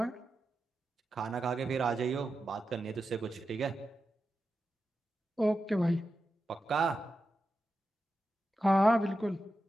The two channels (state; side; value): normal; both; correlation 0.90